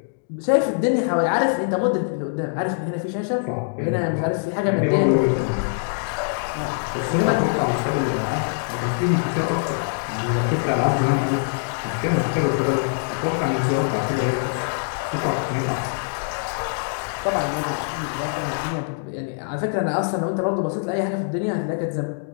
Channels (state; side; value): silent; right; digital silence